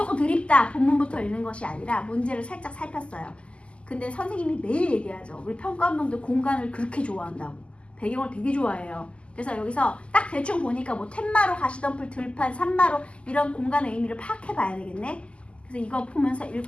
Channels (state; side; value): late; right; 0.055 ms